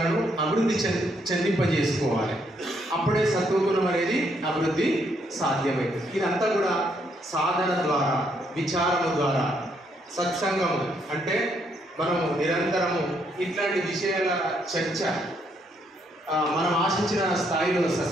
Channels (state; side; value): normal; both; correlation 0.73